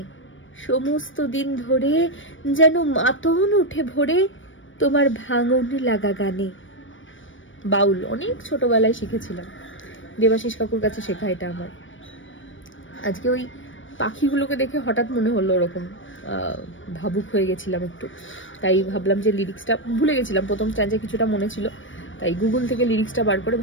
সমস্ত দিন ধরে যেন মাতন উঠে ভরে তোমার ভাঙন লাগা গানে। বাউল অনেক ছোটবেলায় শিখেছিলাম, দেবাশিস কাকুর কাছে শেখা এটা আমার। আজকে ওই পাখিগুলোকে দেখে হঠাৎ মনে হলো ওরকম ভাবুক হয়ে গেছিলাম একটু, তাই ভাবলাম যে লিরিক্সটা ভুলে গেছিলাম, প্রথম স্ট্যান্ডে কিছুটা মনে ছিল, তাই গুগল থেকে লিরিক্সটা বার করে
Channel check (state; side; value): late; right; 0.56 ms